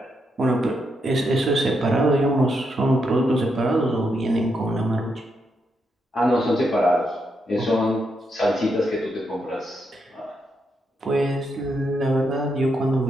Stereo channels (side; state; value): both; normal; correlation 0.81